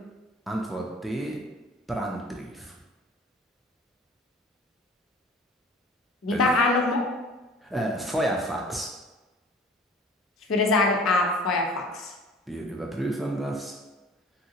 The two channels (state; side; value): normal; both; correlation 0.46